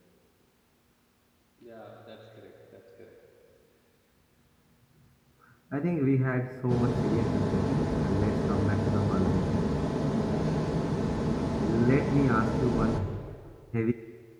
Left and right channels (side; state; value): both; identical; correlation 1.00